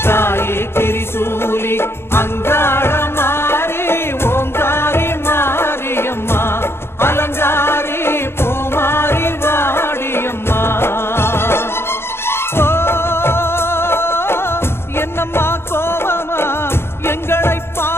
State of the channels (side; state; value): right; late; 0.12 ms